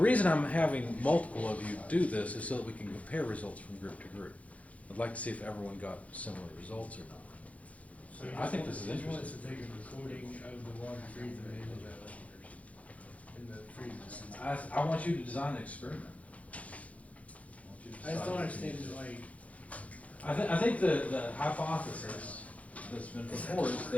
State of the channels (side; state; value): right; late; 0.067 ms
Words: I'm having multiple of you do this is so that we can compare results from group to group. I'd like to see if everyone got similar results or not. So I think this is he wants interesting. to take a recording of the water freezing in the freezer. I want you to design the experiment. I want you to I just don't decide. understand it, like, I think the hypothesis that's been put forward is